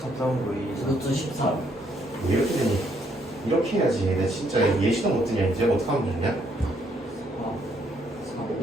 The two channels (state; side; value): normal; both; correlation 0.70